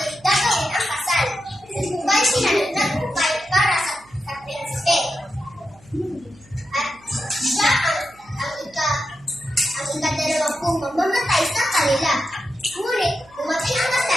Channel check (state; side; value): noise; right; hum, 28 dB below the sound